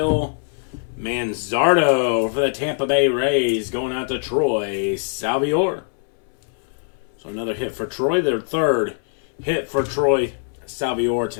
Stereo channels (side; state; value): right; silent; 64 dB below the other